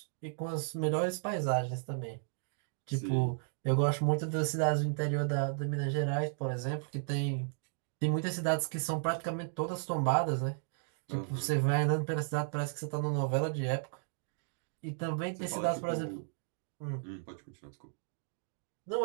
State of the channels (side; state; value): left; silent; digital silence